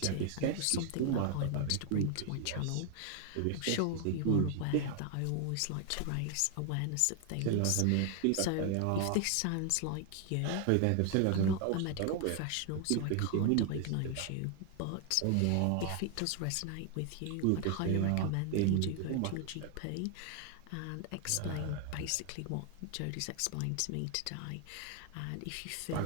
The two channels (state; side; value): different; both; correlation 0.00